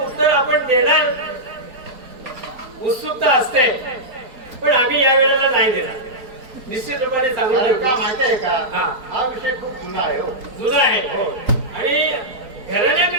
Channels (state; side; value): late; left; 4.3 ms